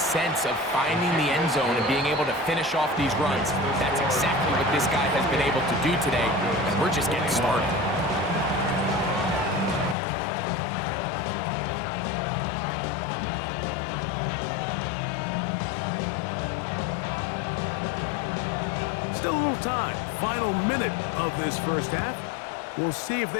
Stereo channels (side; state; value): right; drops out; at 10.0 s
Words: of finding the end zone and being able to finish off these runs. That's exactly what this guy has been able to do today, and we're just getting started. Still a little time. Final minute of this first half. We'll see if